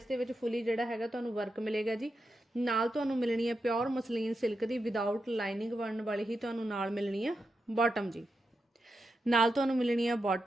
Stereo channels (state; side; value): normal; both; correlation 0.87